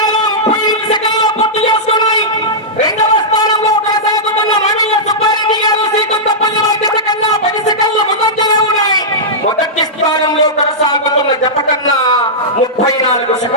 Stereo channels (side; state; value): both; normal; correlation -0.12